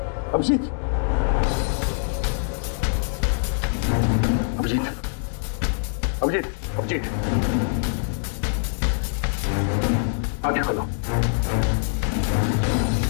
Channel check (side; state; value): right; silent; digital silence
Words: अभिजीत, अभिजीत, अभिजीत, अभिजीत, आंखें खोलो,